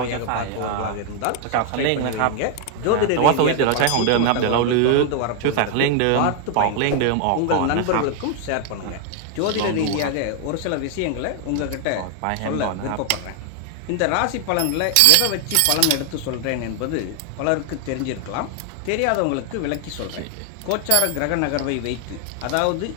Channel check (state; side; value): different; both; correlation 0.00